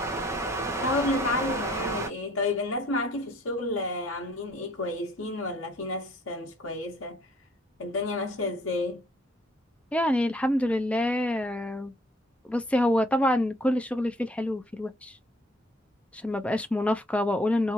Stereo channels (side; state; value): both; normal; correlation 0.60